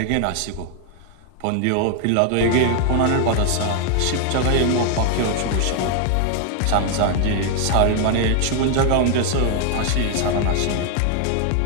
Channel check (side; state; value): both; different; correlation 0.00